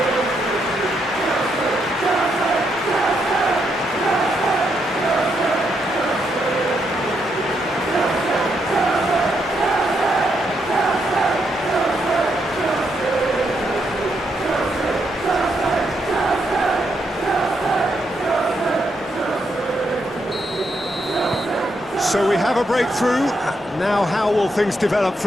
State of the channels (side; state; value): both; normal; correlation 0.79